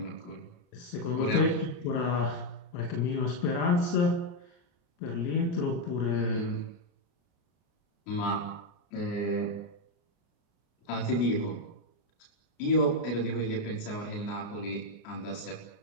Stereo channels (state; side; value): late; right; 29 ms